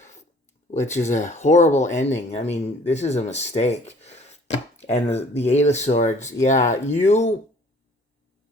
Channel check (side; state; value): both; normal; correlation 0.54